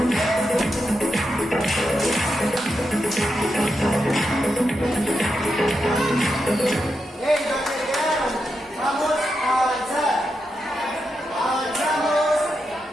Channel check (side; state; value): both; normal; correlation 0.86